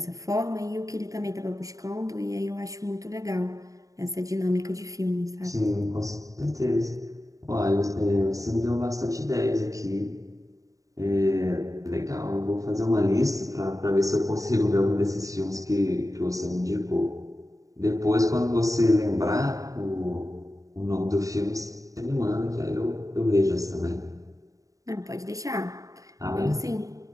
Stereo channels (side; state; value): left; late; 0.16 ms